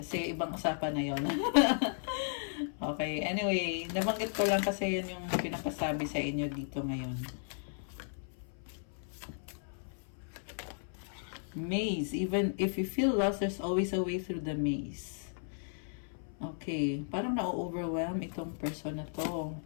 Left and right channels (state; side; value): silent; right; 54 dB below the other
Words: ibang usapan na yun. Okay, anyway, nabanggit ko lang kasi yun yung pinapasabi sa inyo dito ngayon. Maze. Even if you feel lost, there's always a way through the maze. Okay, parang na-overwhelm itong person na to.